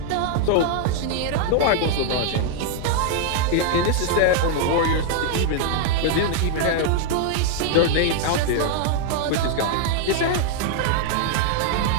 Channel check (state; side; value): different; both; correlation 0.00